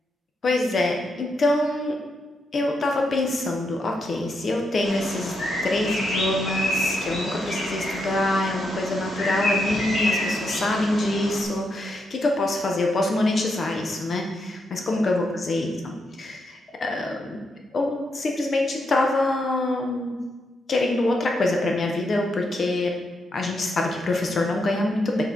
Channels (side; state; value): both; normal; correlation 0.81